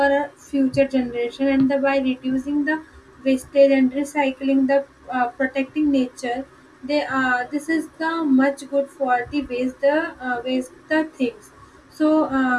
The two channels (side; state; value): both; identical; correlation 1.00